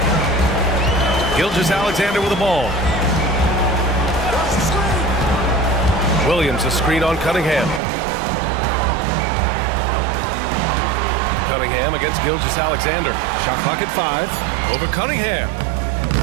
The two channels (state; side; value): drops out; left; at 7.8 s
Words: Gilgeous-Alexander with the ball. Williams a screen on Cunningham. Cunningham against Gilgeous-Alexander. Shot clock at 5. Over Cunningham.